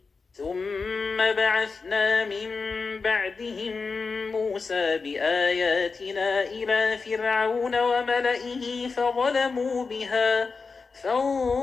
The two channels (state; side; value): quieter; right; 4.6 dB